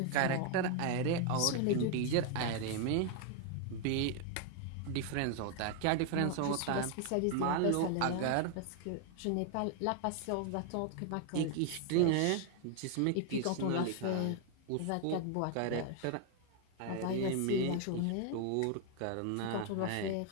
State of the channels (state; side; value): different; both; correlation 0.00